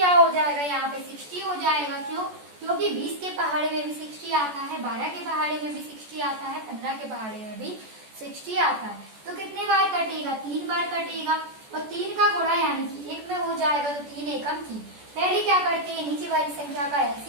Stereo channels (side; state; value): left; late; 14 ms